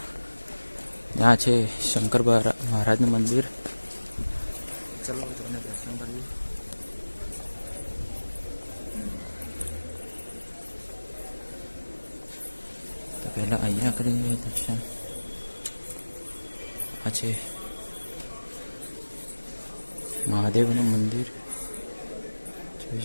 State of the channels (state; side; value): inverted; both; correlation -1.00